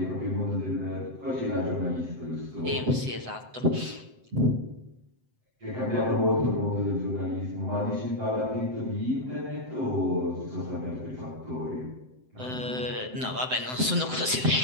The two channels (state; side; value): late; left; 7.8 ms